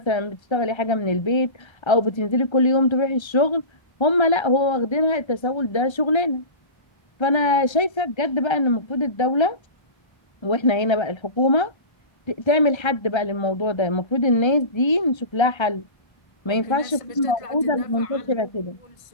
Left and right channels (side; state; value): right; late; 1.3 ms